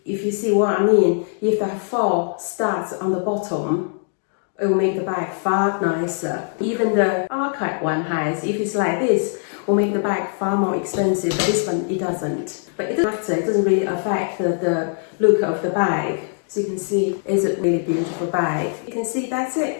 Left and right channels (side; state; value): right; silent; 65 dB below the other